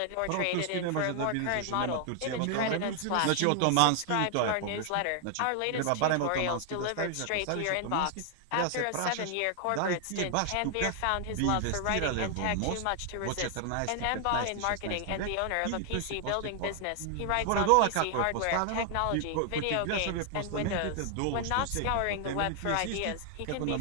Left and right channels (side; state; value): both; different; correlation 0.00